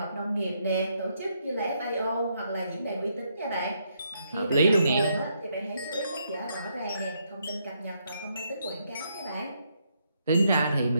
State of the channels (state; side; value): inverted; both; correlation -0.76